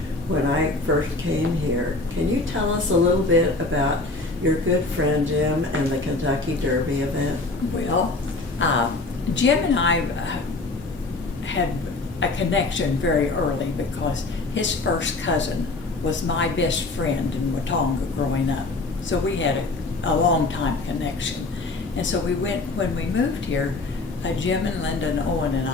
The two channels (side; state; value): right; quieter; 3.3 dB